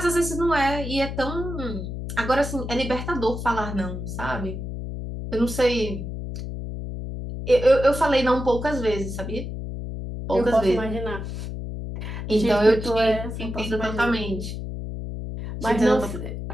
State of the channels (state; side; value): noise; left; hum, 6 dB below the sound